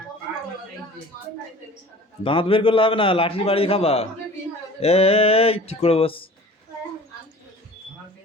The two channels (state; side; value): normal; both; correlation 0.44